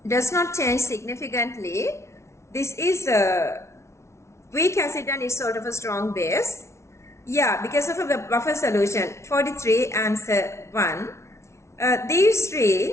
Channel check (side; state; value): right; late; 0.13 ms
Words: does not change significantly. This is a weak acid and it's sort of a strong base. Because of a buffer solution. 43, answer 1. These